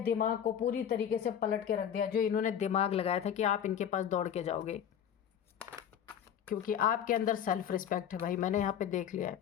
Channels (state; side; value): quieter; right; 9.1 dB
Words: दिमाग को पूरी तरीके से पलट के रख दिया। जो इन्होंने दिमाग लगाया था कि आप इनके पास दौड़ के जाओगे, क्योंकि आपके अंदर सेल्फ रिस्पेक्ट है भाई। मैंने यहाँ पे देख लिया है,